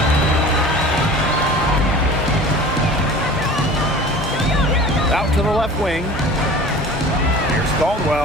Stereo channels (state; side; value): normal; both; correlation 0.41